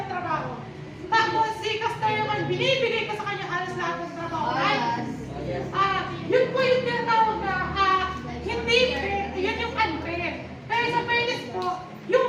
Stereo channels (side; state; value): both; identical; correlation 1.00